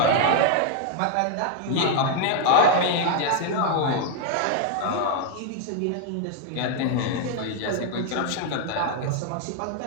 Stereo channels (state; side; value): different; both; correlation 0.00